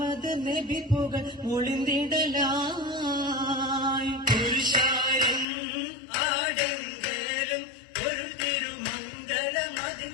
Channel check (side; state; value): right; drops out; at 5.5 s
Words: നബി പുകൾ മൊളിന്തിടലായി പുരുഷാരം ആടെങ്കലും പൊരുൾ തിരുമംഗലമതി